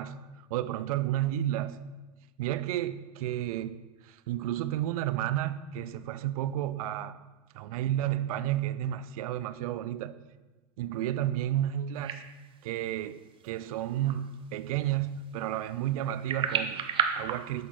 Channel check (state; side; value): quieter; left; 11.3 dB